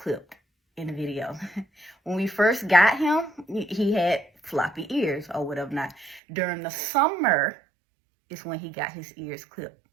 in the video. When we first got him, he had floppy ears or whatever not. During the summer is when he got his ears clipped.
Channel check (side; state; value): left; drops out; at 6.2 s